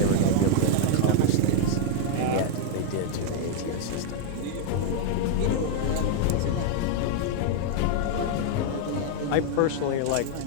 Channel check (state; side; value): different; both; correlation 0.00